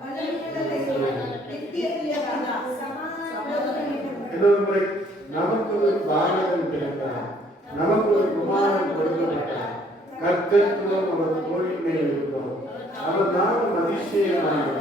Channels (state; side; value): normal; both; correlation 0.62